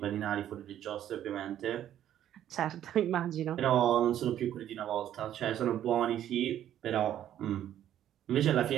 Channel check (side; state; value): left; quieter; 11.2 dB